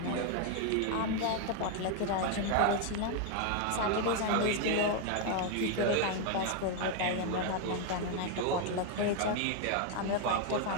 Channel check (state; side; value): different; both; correlation 0.01